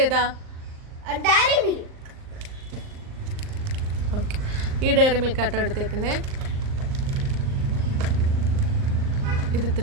ഏതാ? ഓക്കെ, ഈ ഡയറി മിൽക്ക് ആട്ടോ എടുത്തേക്കുന്നേ. ഇത് ഇത്ര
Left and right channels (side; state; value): left; late; 39 ms